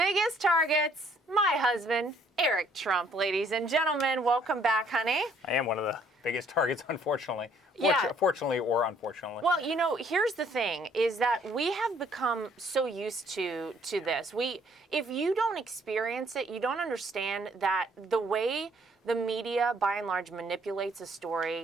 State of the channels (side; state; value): both; normal; correlation 0.64